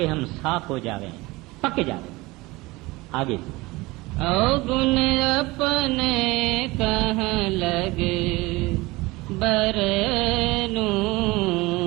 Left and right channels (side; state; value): left; quieter; 21.7 dB